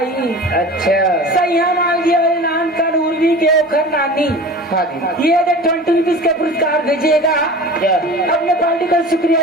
अच्छा सैया माल गिया वाले नाम का उर्वी के ओखर नानी हाँ जी ये 20 रुपीज का पुरस्कार भेजिएगा जय अपने पार्टी का शुक्रिया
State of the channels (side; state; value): both; normal; correlation 0.37